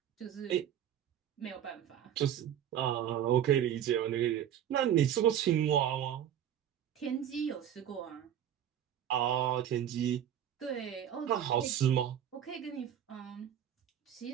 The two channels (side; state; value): left; quieter; 10.2 dB